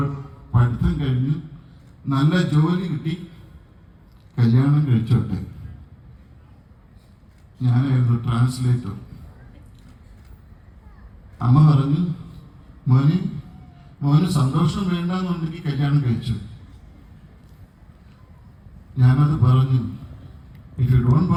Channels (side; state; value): both; identical; correlation 1.00